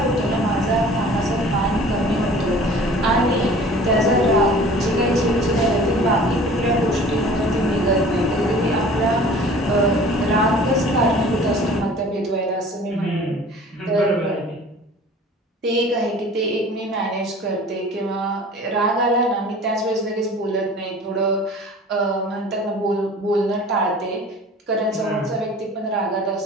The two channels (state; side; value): normal; both; correlation 0.45